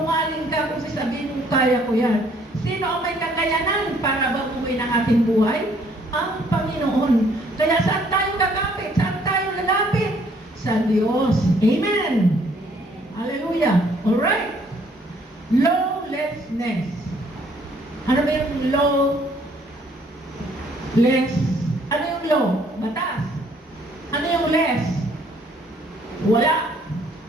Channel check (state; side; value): normal; both; correlation 0.63